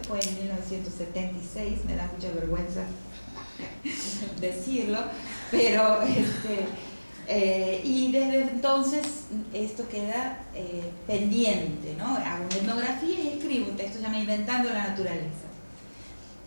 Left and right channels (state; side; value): inverted; both; correlation -1.00